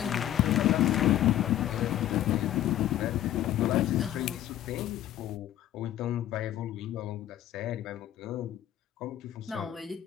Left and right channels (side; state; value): right; quieter; 12.4 dB